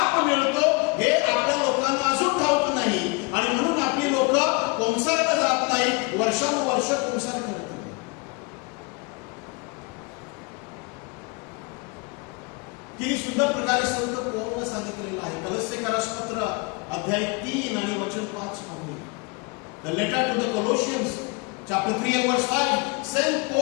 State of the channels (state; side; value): quieter; right; 29.2 dB